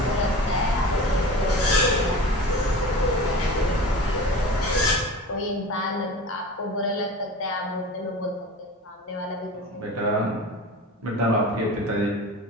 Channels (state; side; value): normal; both; correlation 0.35